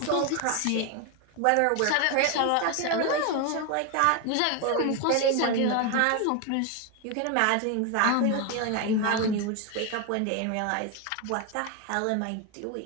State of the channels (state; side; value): different; both; correlation 0.01